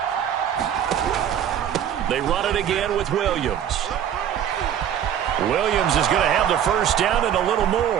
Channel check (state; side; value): quieter; left; 9.6 dB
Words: They run it again with Williams. Williams is going to have the 1st down and a little